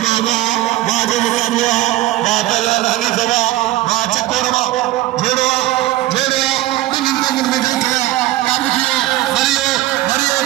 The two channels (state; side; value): quieter; left; 16.2 dB